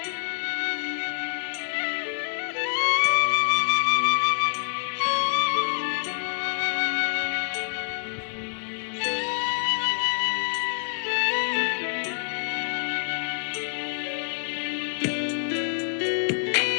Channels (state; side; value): silent; right; 56 dB below the other